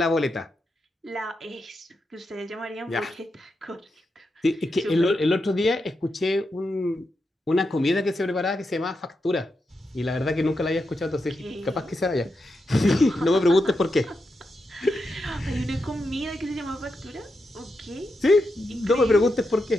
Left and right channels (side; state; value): both; normal; correlation 0.86